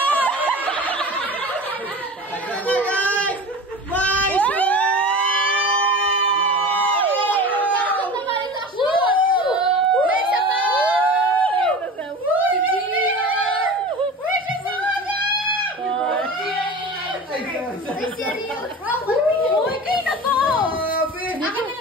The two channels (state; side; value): normal; both; correlation 0.34